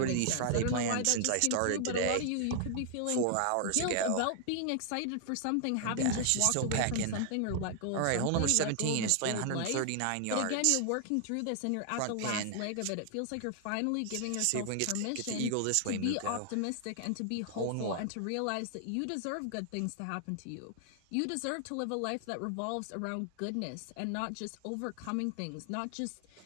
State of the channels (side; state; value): both; different; correlation 0.00